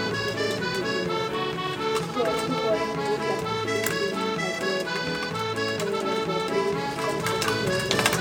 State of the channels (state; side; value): identical; both; correlation 1.00